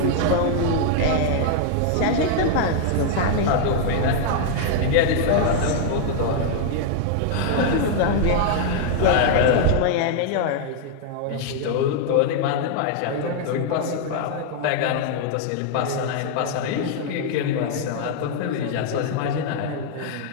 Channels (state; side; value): different; both; correlation 0.00